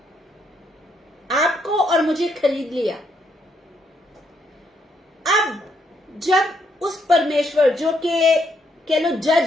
आपको और मुझे खरीद लिया। अब जब उस परमेश्वर जो के कह लो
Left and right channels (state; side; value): normal; both; correlation 0.75